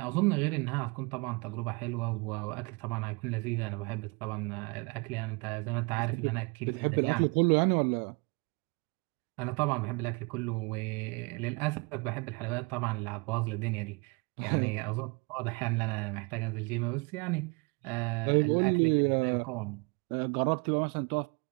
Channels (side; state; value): left; quieter; 30.1 dB